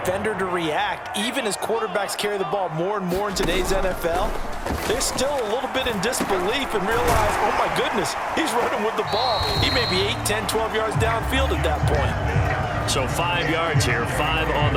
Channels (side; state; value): both; identical; correlation 1.00